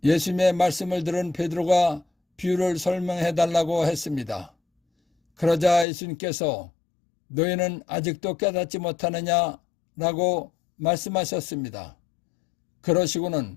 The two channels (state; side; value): drops out; right; at 5.9 s